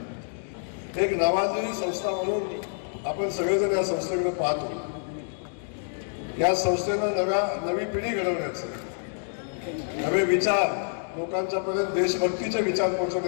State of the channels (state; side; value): silent; right; digital silence